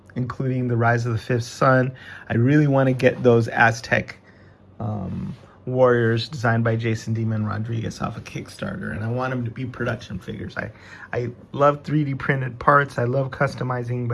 including the Rise of the Fifth Sun. I really want to get those Aztec warriors designed by Jason Demon Rodriguez off a Kickstarter, and I want them to be production figures. I love 3D printed parts. I love customizing,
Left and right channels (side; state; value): both; identical; correlation 1.00